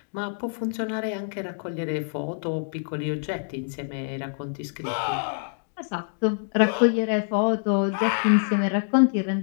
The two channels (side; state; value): right; silent; digital silence